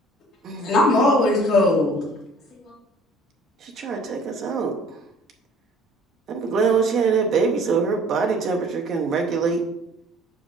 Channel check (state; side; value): normal; both; correlation 0.52